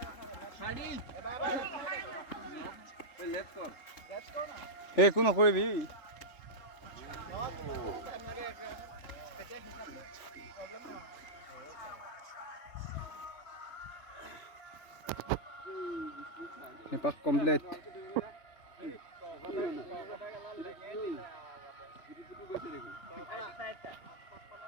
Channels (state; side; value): late; right; 3.4 ms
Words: একো নকৰিবি এপাক complete